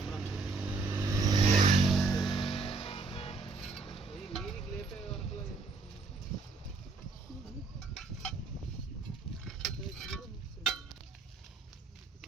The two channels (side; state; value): left; quieter; 4.0 dB